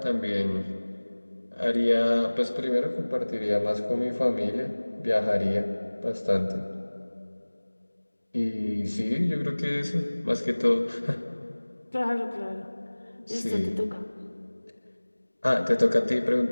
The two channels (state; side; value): inverted; both; correlation -1.00